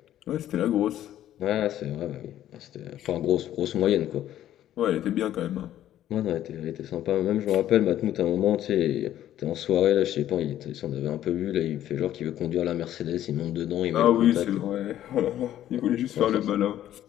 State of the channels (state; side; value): quieter; right; 12.1 dB